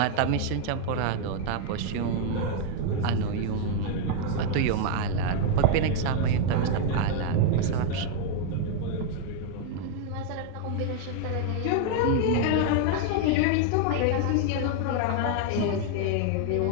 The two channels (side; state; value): both; different; correlation 0.00